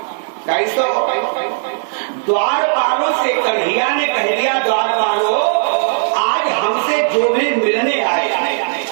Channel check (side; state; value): left; silent; 55 dB below the other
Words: कैसो द्वारपालों से कन्हैया ने कह दिया, द्वारपालों आज हमसे जो भी मिलने आए